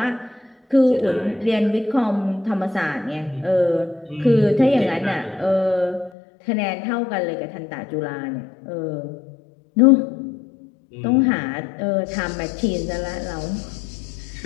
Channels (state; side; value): drops out; right; at 6.1 s